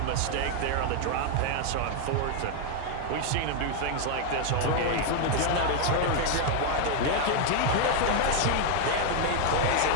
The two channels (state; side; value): different; both; correlation 0.00